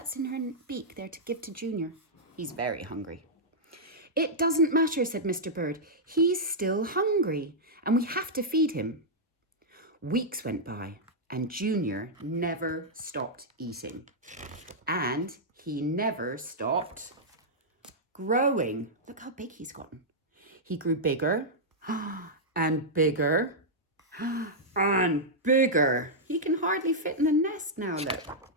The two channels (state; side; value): normal; both; correlation -0.08